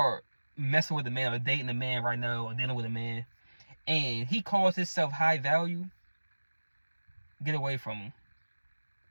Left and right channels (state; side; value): inverted; both; correlation -1.00